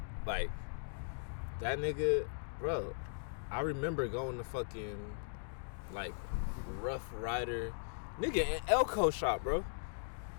Like, that nigga, bro, I remember going to fucking, like, Rough Rider. Nigga, in Elko shop, bro.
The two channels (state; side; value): silent; right; digital silence